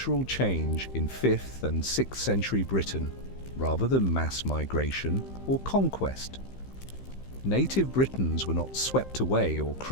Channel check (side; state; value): right; late; 15 ms